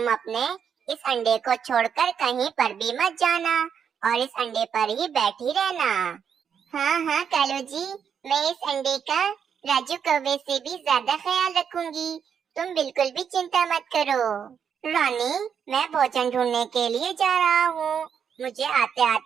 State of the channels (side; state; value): left; quieter; 7.5 dB